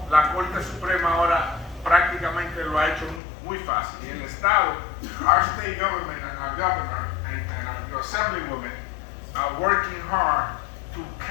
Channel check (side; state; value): right; drops out; at 3.2 s